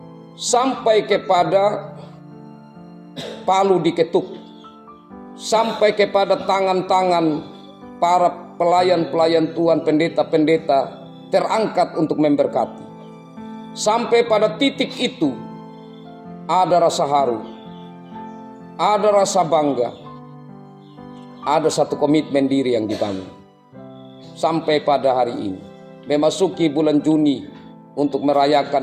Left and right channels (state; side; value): identical; both; correlation 1.00